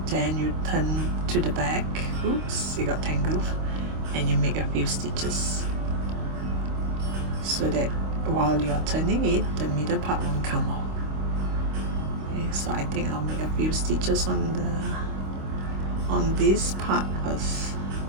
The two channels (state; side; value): late; left; 26 ms